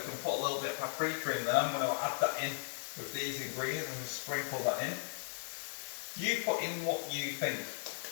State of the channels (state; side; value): silent; right; digital silence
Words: can put a little bit of paprika in there. I'm going to add that in with these ingredients and just sprinkle that in. You put in what you think.